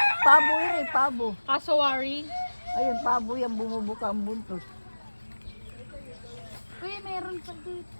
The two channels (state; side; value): inverted; both; correlation -1.00